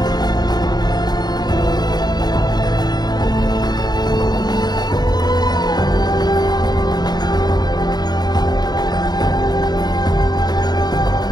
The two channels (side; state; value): right; late; 0.20 ms